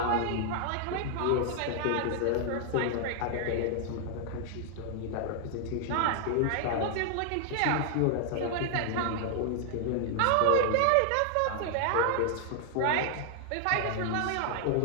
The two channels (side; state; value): both; different; correlation 0.00